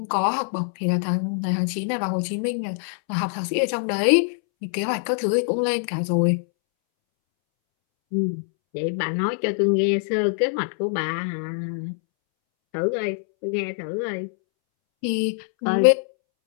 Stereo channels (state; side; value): silent; right; 63 dB below the other